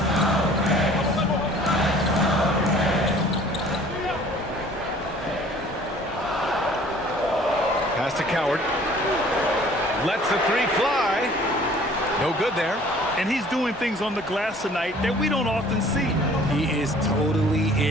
Pass to Coward. Lets the three fly. No good there. And he's doing things on the glass tonight that we don't often see. He is totally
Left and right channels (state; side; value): normal; both; correlation 0.52